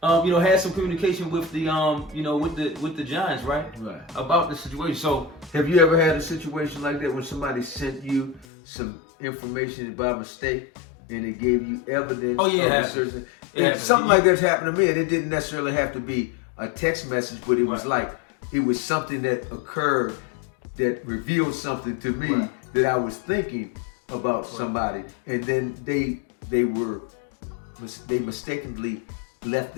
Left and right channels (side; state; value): right; drops out; at 8.5 s